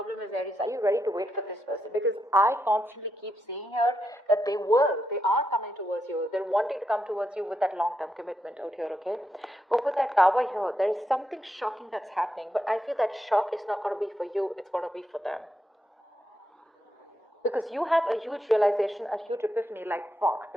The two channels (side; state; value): both; normal; correlation 0.83